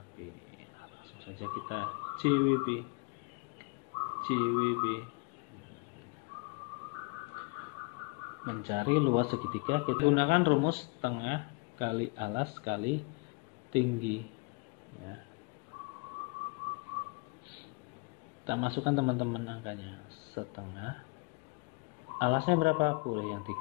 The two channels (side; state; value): right; quieter; 28.9 dB